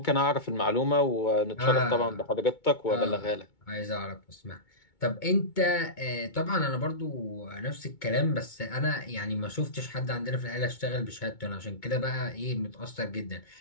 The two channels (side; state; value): right; late; 2.2 ms